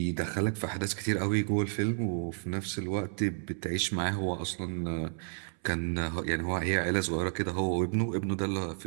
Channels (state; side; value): silent; left; 56 dB below the other